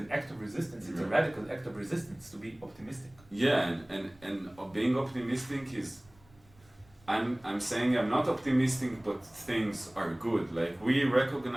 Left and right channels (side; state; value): right; noise; rumble, 28 dB below the sound